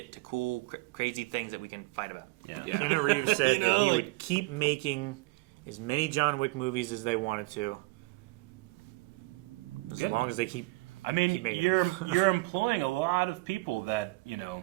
to cool, crazy things that we can fight about? Yeah. Keanu Reeves said that he would keep making as many John Wick movies as they wanted to, as long as they keep. I mean, you're employing a lot of people that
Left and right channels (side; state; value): left; quieter; 22.9 dB